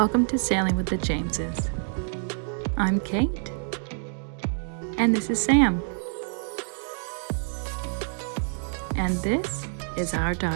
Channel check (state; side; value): silent; left; 60 dB below the other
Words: to Sailing with the Jameses. I'm Kate, and this is Sam. And this is our